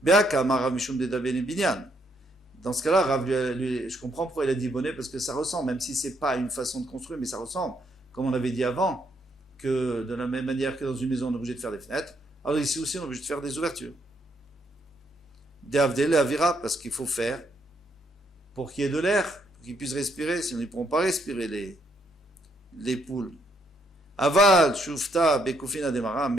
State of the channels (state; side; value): normal; both; correlation 0.73